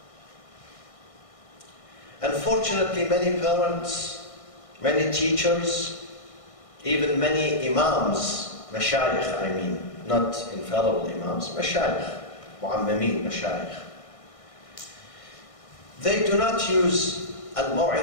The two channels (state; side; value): late; right; 1.6 ms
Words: Unfortunately, many parents, many teachers, even many imams, mashayikh I mean, not infallible imams, mashayikh, mu'ammamin, mashayikh. They do not use